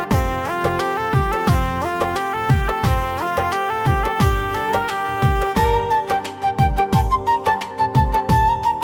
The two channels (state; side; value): identical; both; correlation 1.00